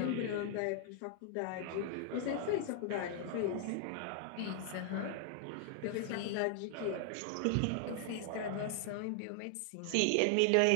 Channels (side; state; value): both; different; correlation 0.00